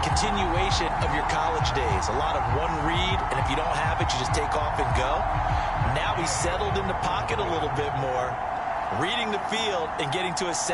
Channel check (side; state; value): both; identical; correlation 1.00